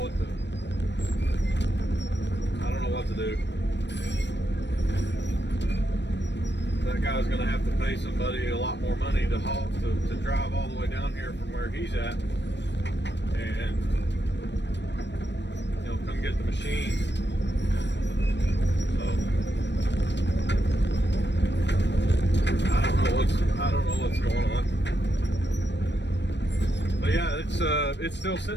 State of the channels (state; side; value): late; right; 0.51 ms